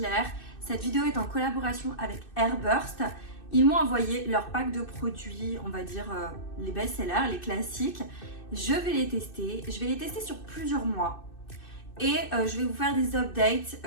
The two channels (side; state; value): right; late; 2.6 ms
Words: Cette vidéo est en collaboration avec Airburst. Ils m'ont envoyé leur pack de produits, on va dire les best-sellers, les classiques. Je vais les tester. Je vais les tester sur plusieurs mois. Et je vais vous faire des updates